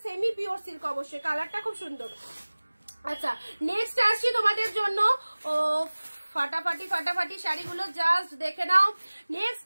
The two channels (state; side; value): inverted; both; correlation -1.00